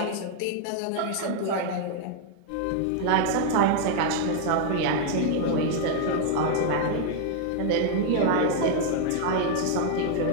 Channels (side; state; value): both; different; correlation 0.00